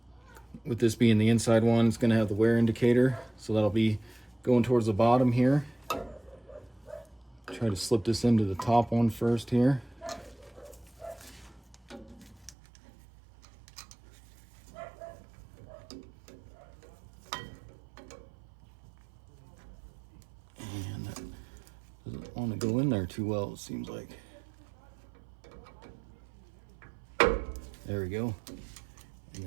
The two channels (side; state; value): left; drops out; at 12.6 s